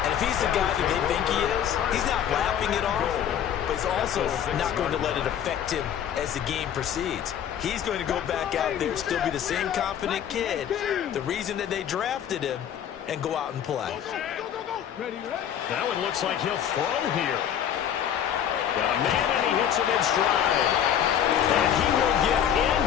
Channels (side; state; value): right; quieter; 9.5 dB